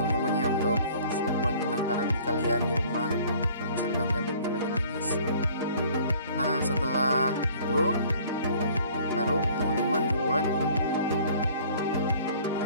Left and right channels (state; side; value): inverted; both; correlation -0.53